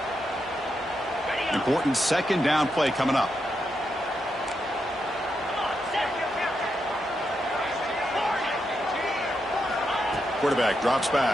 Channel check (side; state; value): both; normal; correlation 0.84